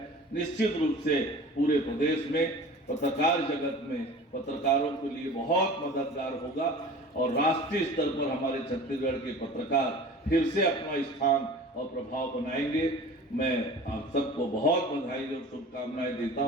निश्चित रूप से पूरे प्रदेश में पत्रकार जगत में पत्रकारों के लिए बहुत मददगार होगा और राष्ट्रीय स्तर पर हमारे छत्तीसगढ़ के पत्रकार फिर से अपना स्थान और प्रभाव बनाएंगे। मैं आप सबको बहुत बधाई और शुभकामनाएं देता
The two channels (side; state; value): both; normal; correlation 0.41